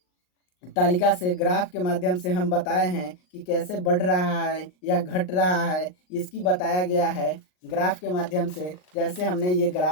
तालिका से ग्राफ के माध्यम से हम बताए हैं कि कैसे बढ़ रहा है या घट रहा है, इसकी बताया गया है ग्राफ के माध्यम से, जैसे हमने ये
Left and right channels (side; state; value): right; late; 39 ms